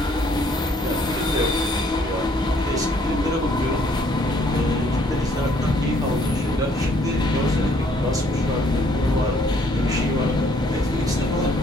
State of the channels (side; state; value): both; normal; correlation 0.64